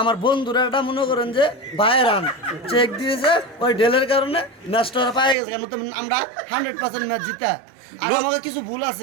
বন্ধুরা এটা মনে করেন যে বাই রান চেক দিয়েছে, ওই ডেলের কারণে ম্যাচটা পায়ে গেছে, কেন তো আমরা 100% ম্যাচ জিতা। আর আমাকে কিছু ভুল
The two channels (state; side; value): drops out; left; at 5.4 s